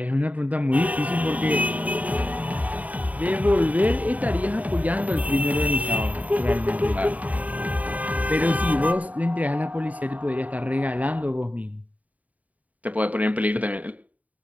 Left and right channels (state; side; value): late; left; 0.072 ms